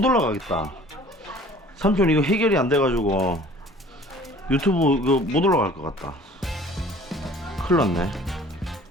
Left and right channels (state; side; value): normal; both; correlation 0.50